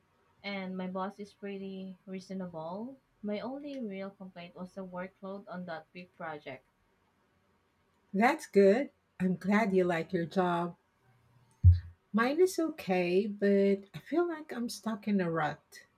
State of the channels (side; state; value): both; identical; correlation 1.00